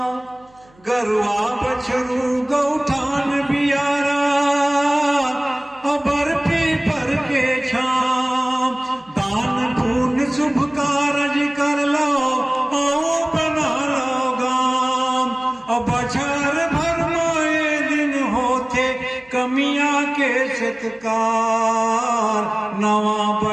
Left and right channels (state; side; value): noise; right; hum, 30 dB below the sound